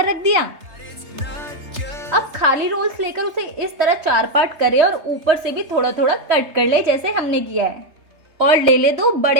रख दिया। अब खाली रोल्स लेकर उसे इस तरह 4 पार्ट करें और ऊपर से भी थोड़ा थोड़ा कट कर ले जैसे हमने किया है, और ले ले 2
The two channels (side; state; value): left; late; 3.3 ms